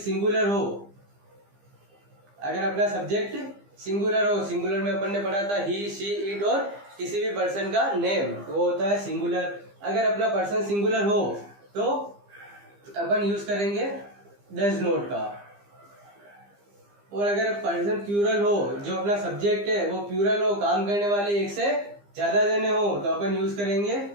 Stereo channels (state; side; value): late; left; 15 ms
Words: हो, अगर अपना सब्जेक्ट सिंगुलर हो, सिंगुलर में अपन ने पढ़ा था ही, शी, इट और किसी भी पर्सन का नेम, वो होता है सिंगुलर। अगर अपना पर्सन सिंगुलर हो तो अपन यूज करेंगे डज नॉट का। और अगर पर्सन प्लूरल हो, जो अपना सब्जेक्ट है वो प्लूरल हो, काम करने वाले एक से ज्यादा जने हो, तो अपन यूज करेंगे